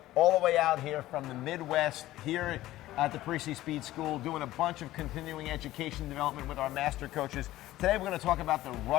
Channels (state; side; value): quieter; right; 15.7 dB